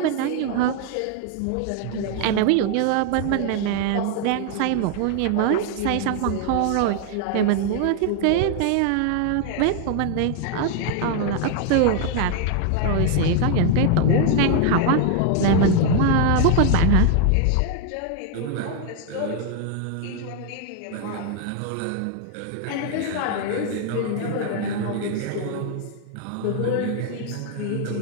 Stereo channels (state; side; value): different; both; correlation 0.00